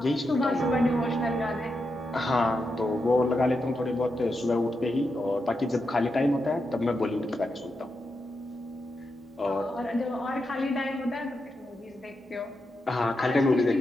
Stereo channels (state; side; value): normal; both; correlation 0.86